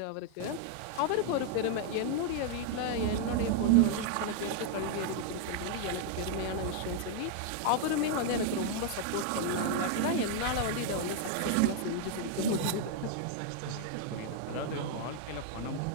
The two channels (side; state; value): both; different; correlation 0.00